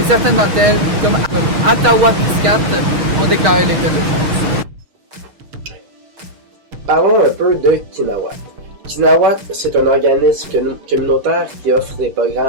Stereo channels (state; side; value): late; left; 6.7 ms